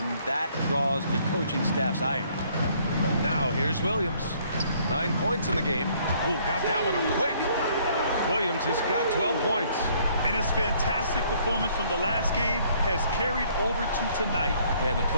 that draws the coaching staff's ire. Now here's Williams. 9 points in the game. Oh, got that one up quick. Williams has got 12 points. And his fantastic performance from the last game has carried over to tonight. Yeah, the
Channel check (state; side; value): inverted; both; correlation -0.63